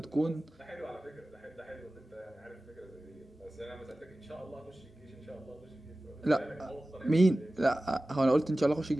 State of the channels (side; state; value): both; normal; correlation 0.96